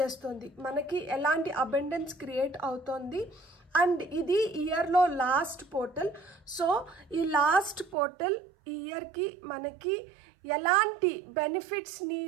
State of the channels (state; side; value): drops out; left; at 8.0 s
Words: మనకి ఎలాంటి అబండెన్స్ క్రియేట్ అవుతోంది అండ్ ఇది ఇయర్ లో లాస్ట్ పోర్టల్। సో ఈ లాస్ట్ పోర్టల్ ఈ ఇయర్ కి మనకి ఎలాంటి బెనిఫిట్స్ ని